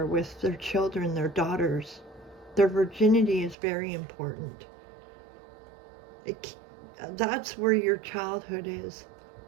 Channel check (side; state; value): left; drops out; at 3.6 s